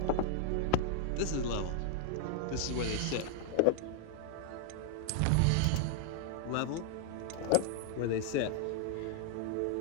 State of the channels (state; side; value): different; both; correlation 0.00